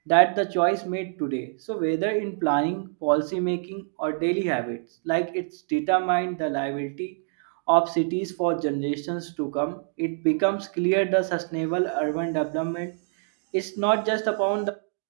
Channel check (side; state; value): left; silent; digital silence